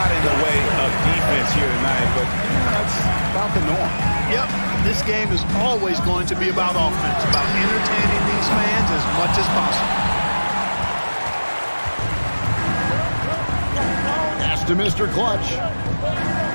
in the way of defense here tonight, but that's about the norm. Yep, this game is always going to be about offense, about entertaining these fans as much as possible. Pass to Mr. Clutch.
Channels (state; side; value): inverted; both; correlation -1.00